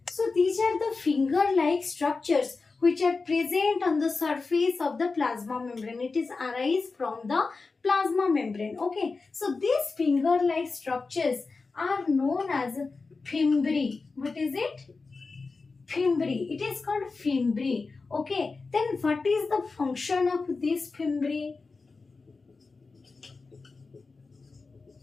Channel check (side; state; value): right; quieter; 4.1 dB